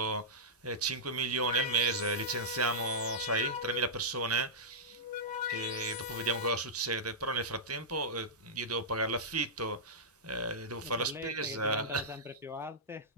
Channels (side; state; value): both; normal; correlation -0.14